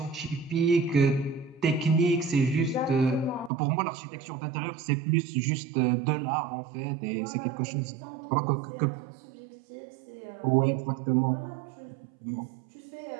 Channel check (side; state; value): left; drops out; at 3.5 s